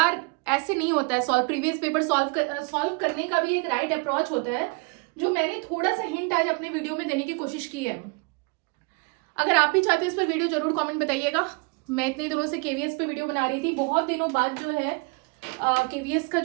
ऐसे नहीं होता है सॉल्व। प्रीवियस पेपर सॉल्व करने का भी एक राइट अप्रोच होता है, जो मैंने थोड़ा सा हिंट आज अपने वीडियो में देने की कोशिश की है। अगर आप भी चाहते हैं इस पर वीडियो जरूर कमेंट बताइएगा। मैं इतने दिनों से केवीएस पे वीडियो बना रही थी, बहुत दिनों बाद जो है KVS का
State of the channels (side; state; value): left; quieter; 31.1 dB